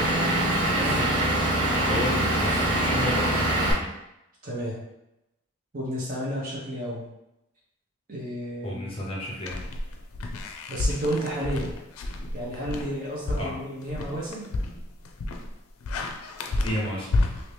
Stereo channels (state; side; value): normal; both; correlation 0.43